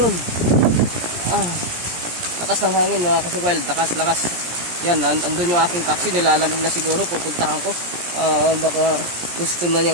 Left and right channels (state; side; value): late; left; 17 ms